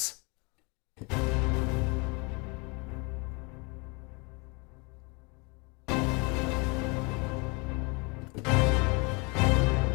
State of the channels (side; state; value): right; quieter; 29.9 dB